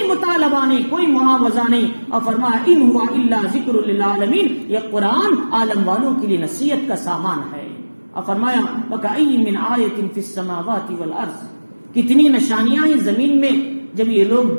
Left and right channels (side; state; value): both; inverted; correlation -1.00